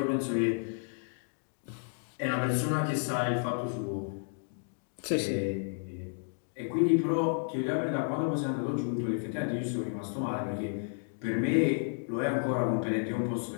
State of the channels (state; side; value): silent; right; digital silence